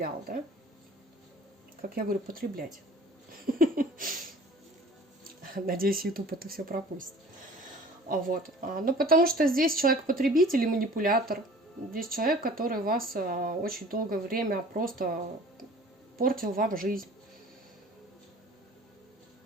да? Как я говорю, потреблять. Надеюсь, YouTube это все пропустит. Вот. Ну, потому что здесь человек-потребитель и манипулятор. Здесь человек, который вас очень долгое время просто портил вам жизнь.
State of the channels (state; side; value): normal; both; correlation 0.47